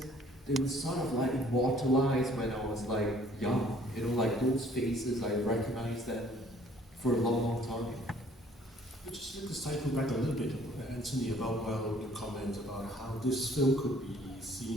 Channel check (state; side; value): normal; both; correlation 0.58